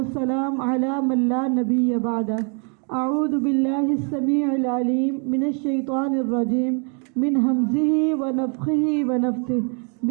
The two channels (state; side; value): quieter; left; 39.5 dB